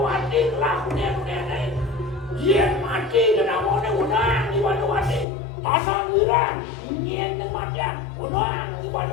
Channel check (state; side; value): drops out; right; at 5.2 s